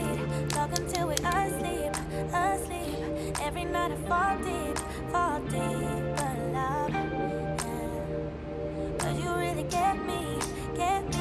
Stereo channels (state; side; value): identical; both; correlation 1.00